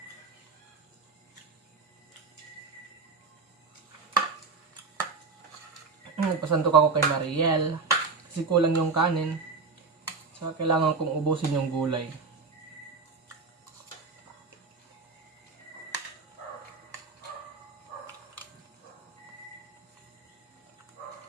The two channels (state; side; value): quieter; left; 4.5 dB